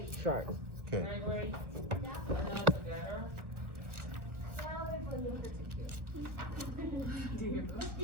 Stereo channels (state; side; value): late; left; 1.3 ms